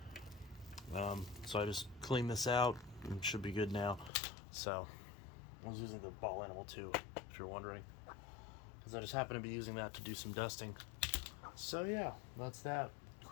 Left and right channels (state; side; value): drops out; right; at 4.1 s